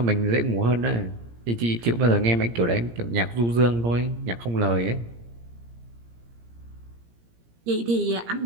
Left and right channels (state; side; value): late; left; 17 ms